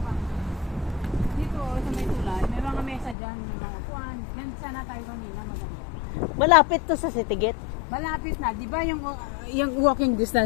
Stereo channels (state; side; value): drops out; right; at 3.2 s